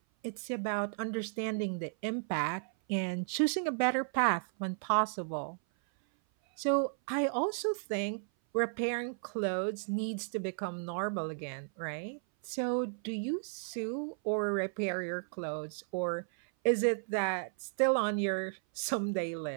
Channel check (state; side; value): silent; left; 55 dB below the other